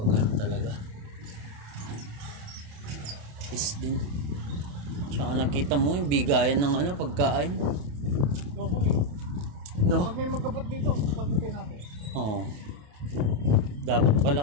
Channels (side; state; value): left; late; 28 ms